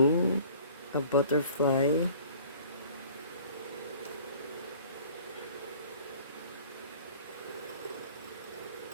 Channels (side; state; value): both; inverted; correlation -0.50